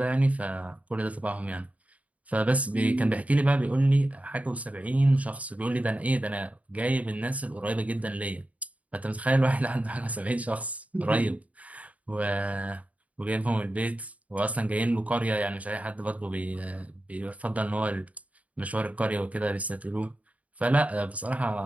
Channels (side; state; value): left; late; 0.069 ms